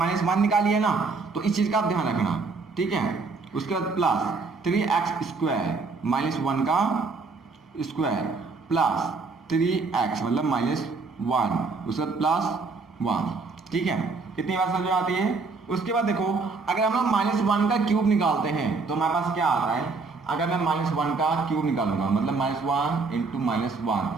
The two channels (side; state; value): left; quieter; 4.2 dB